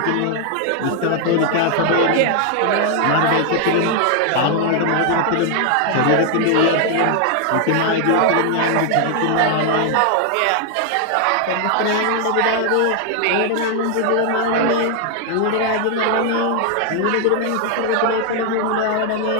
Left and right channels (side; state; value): both; different; correlation 0.00